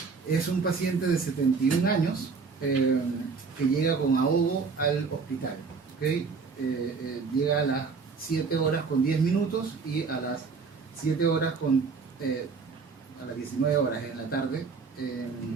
Es un paciente de 71 años que llega con ahogo al hospital. ¿Okay? Llega a las 7 horas con 10 minutos y a las 7 horas a las 19 horas en la tarde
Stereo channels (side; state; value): left; quieter; 5.0 dB